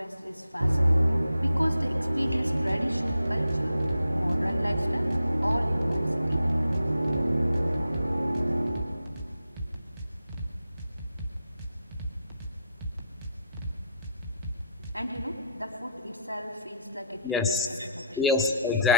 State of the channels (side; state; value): both; inverted; correlation -0.73